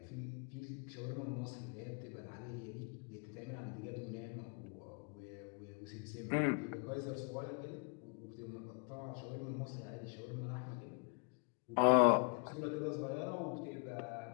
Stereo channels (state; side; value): quieter; right; 39.4 dB